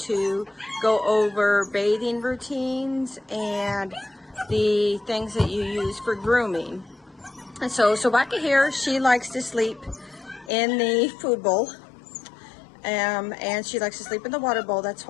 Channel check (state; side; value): drops out; right; at 10.5 s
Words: go over bathing routines and the things that you use for grooming. And so Sobaka here, she likes to sleep in the food bowl. And she likes to sleep in the water bowl. That's